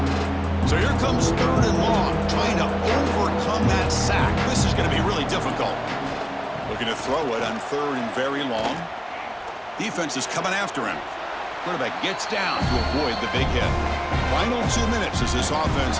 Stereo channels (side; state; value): both; identical; correlation 1.00